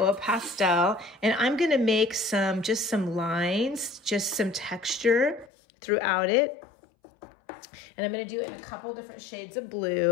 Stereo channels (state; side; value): drops out; right; at 5.5 s